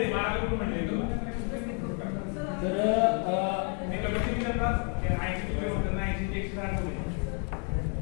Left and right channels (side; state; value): right; quieter; 39.7 dB